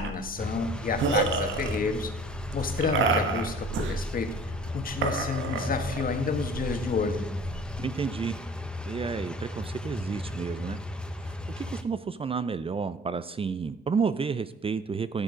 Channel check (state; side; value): normal; both; correlation 0.48